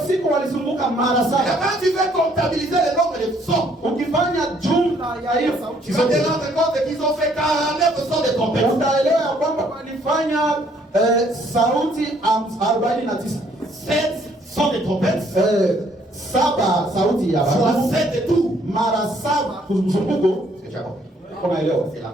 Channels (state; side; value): normal; both; correlation 0.65